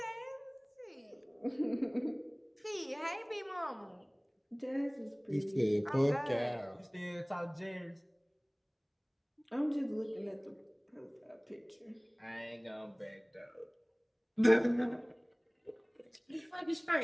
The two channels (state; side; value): identical; both; correlation 1.00